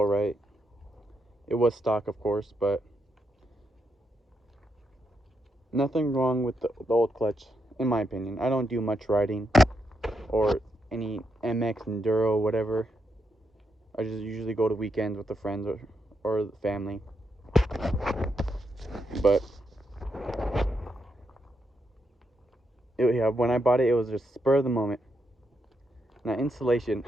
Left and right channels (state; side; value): normal; both; correlation 0.81